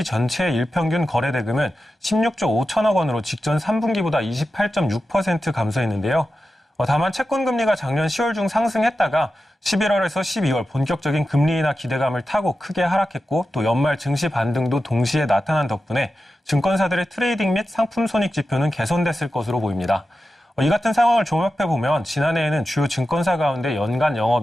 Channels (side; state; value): both; normal; correlation 0.92